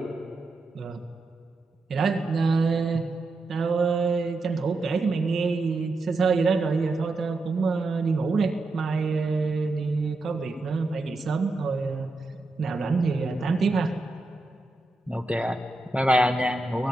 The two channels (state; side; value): quieter; left; 3.2 dB